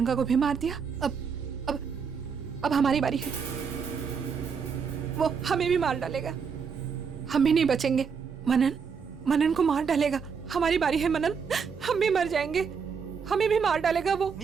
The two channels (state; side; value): quieter; left; 6.1 dB